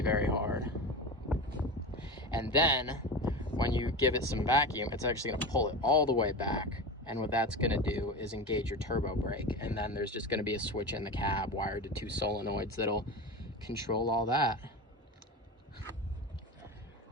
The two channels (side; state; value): both; normal; correlation 0.26